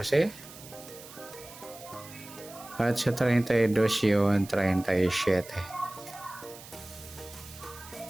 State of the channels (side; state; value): right; noise; hiss, 17 dB below the sound